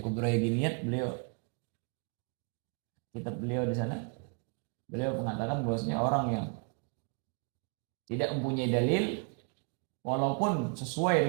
Kubra Yaginiyat, beliau kitab beliau di sana. Beliau mengatakan bahwasanya orang yang tidak mempunyai dalil walaupun sesuai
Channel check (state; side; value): quieter; left; 38.7 dB